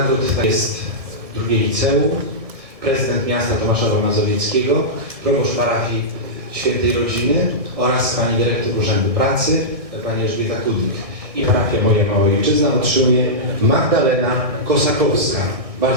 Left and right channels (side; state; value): left; late; 1.6 ms